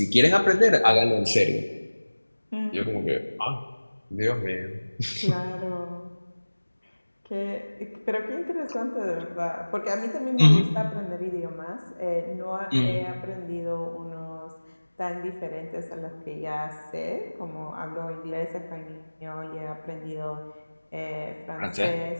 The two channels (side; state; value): both; inverted; correlation -1.00